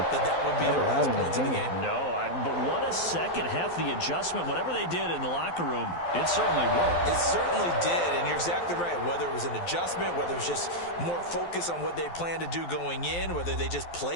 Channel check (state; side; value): late; right; 12 ms